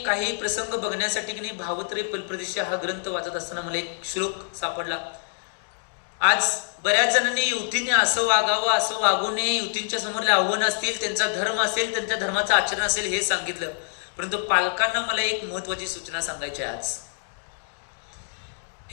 काही प्रसंग बघण्यासाठी की नाही भावत्रय फलप्रदेशी हा ग्रंथ वाचत असताना मला एक श्लोक सापडला। आज बऱ्याच जणांनी युवतीने असं वागावं असं वागू नये, युवतींच्या समोरले आव्हान असतील, त्यांचा धर्म असेल, त्यांच्या धर्माचं आचरण असेल हे सांगितलं। परंतु पालकांना मला एक महत्वाची सूचना सांगायची आहे आज।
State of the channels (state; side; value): silent; right; digital silence